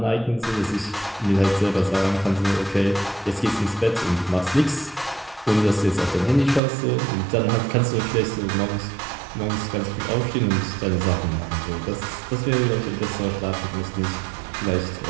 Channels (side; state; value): left; drops out; at 6.6 s